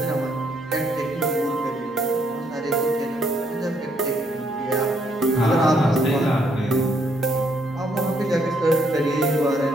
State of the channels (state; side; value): normal; both; correlation 0.71